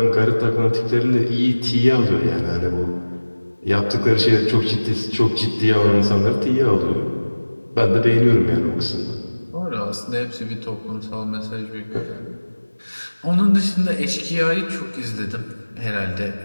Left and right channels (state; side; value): inverted; both; correlation -1.00